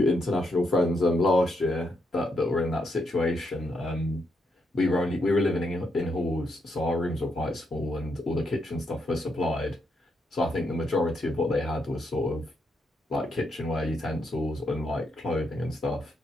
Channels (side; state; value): both; normal; correlation 0.79